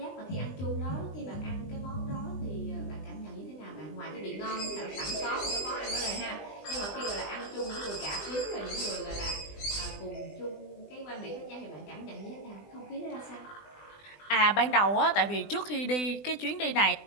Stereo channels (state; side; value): late; right; 20 ms